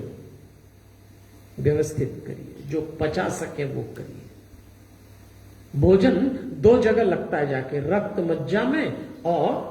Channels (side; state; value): both; identical; correlation 1.00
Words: व्यवस्थित करिए, जो पचा सके वो करिए। भोजन 2 जगह लगता है जाके, रक्त मज्जा में और